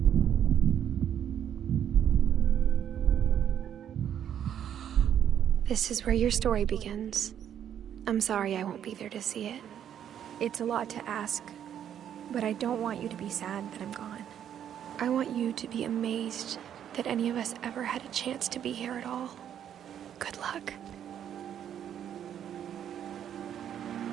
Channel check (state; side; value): quieter; left; 9.6 dB